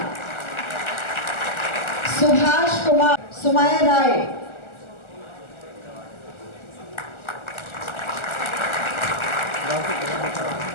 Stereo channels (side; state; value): right; late; 1.4 ms